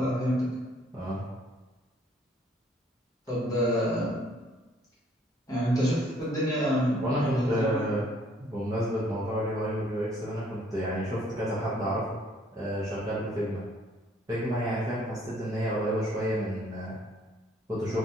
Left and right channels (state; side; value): normal; both; correlation 0.62